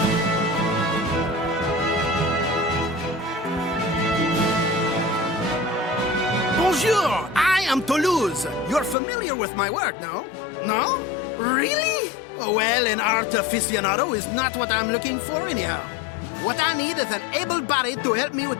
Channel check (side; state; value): right; drops out; at 9.0 s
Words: Bonjour, I am Toulouse. You're familiar with my work, no? No? Really? Oh, well, an art aficionado is not what I'm looking for anyhow. What I need is an able body to help me